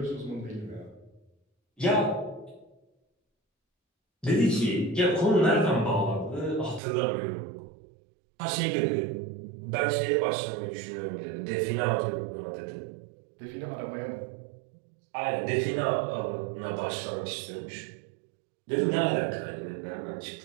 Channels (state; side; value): drops out; left; at 6.8 s